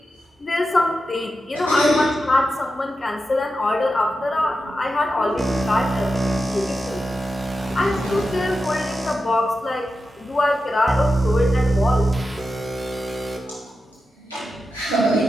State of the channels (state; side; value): normal; both; correlation 0.90